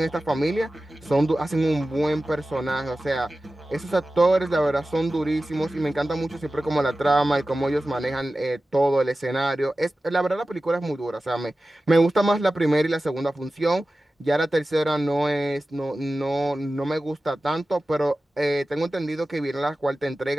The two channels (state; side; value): normal; both; correlation 0.95